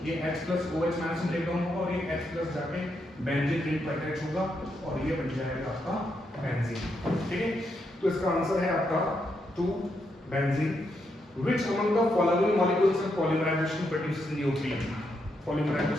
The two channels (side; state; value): both; normal; correlation 0.80